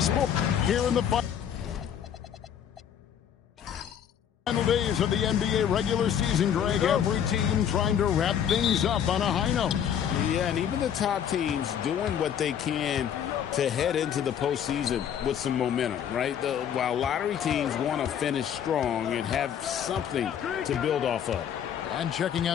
Sports here in the final days of the NBA regular season, Greg. Every team trying to wrap things up on a high note. Yeah, and even the top teams doing what they can to head into the postseason with some momentum, right? While lottery teams want to finish strong and have something to build off of. And checking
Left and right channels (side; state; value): right; quieter; 9.0 dB